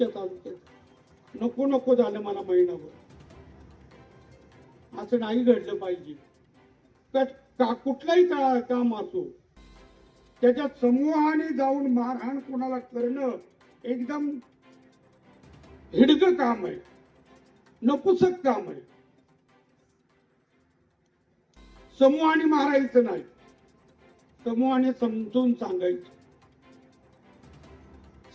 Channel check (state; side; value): identical; both; correlation 1.00